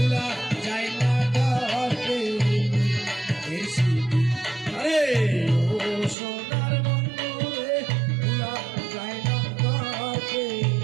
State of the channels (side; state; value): left; drops out; at 6.2 s